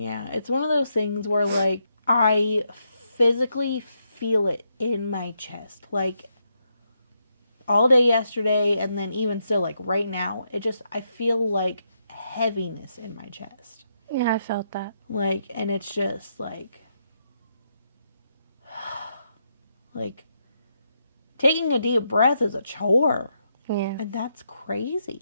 it's one of those things where, like, I physically feel it in my chest. Like, all day yesterday, and then even still, like, right now, I feel, like, heaviness in my chest. Yeah, I felt that. Like, and it's just, like, taking a deep breath is a chore. Yeah. And that's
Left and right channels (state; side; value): inverted; both; correlation -0.80